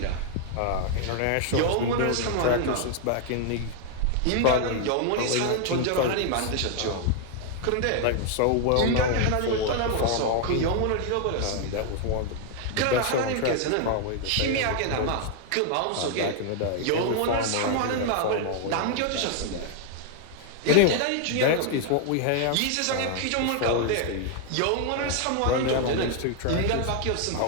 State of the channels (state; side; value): different; both; correlation 0.00